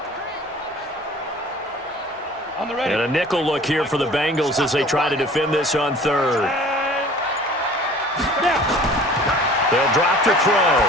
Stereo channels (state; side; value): normal; both; correlation 0.47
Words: And a nickel look here for the Bengals as they try to defend this on third. They'll drop to throw.